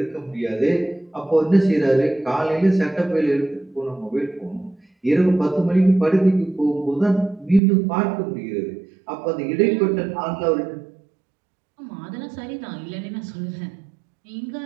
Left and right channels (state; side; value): drops out; left; at 7.6 s